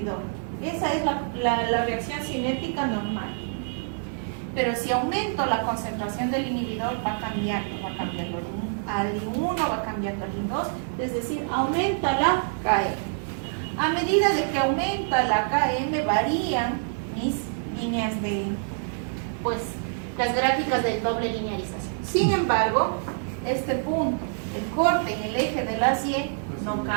esa es la reacción cinética normal. Pero si aumento la concentración del inhibidor, va cambiando al I1, va cambiando al I2, es decir, aumenta la KM. A medida de que aumenta la KM, varían mis líneas pues, las gráficas de doble linealización. Sin embargo, este punto, el corte en el eje de las Y, no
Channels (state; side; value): silent; left; digital silence